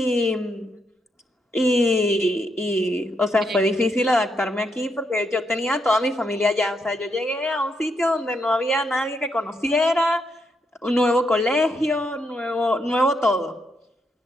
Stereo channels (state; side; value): normal; both; correlation 0.79